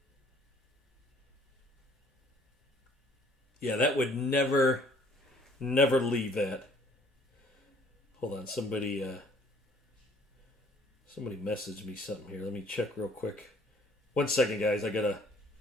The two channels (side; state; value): both; normal; correlation 0.58